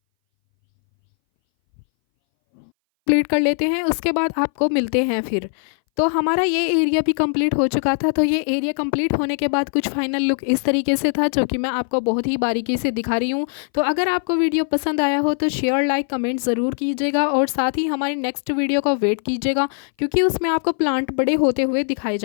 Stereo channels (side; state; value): right; silent; 61 dB below the other